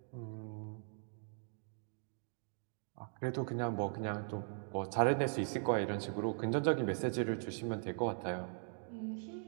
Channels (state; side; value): silent; left; 51 dB below the other